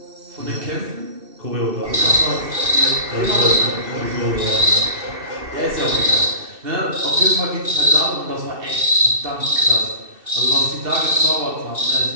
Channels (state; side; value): late; left; 2.6 ms